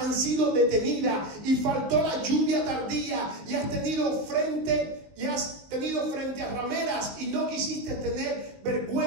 sido detenidas y faltó la lluvia tardía, y has tenido frente y has tenido frente a rameras y no quisiste tener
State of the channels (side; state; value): left; late; 19 ms